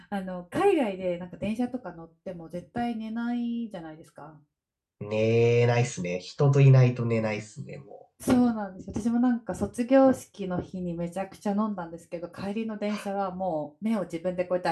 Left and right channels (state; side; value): identical; both; correlation 1.00